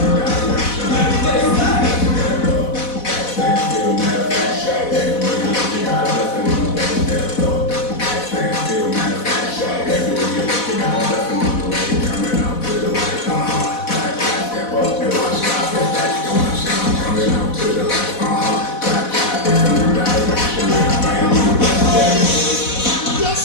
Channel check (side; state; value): right; late; 4.1 ms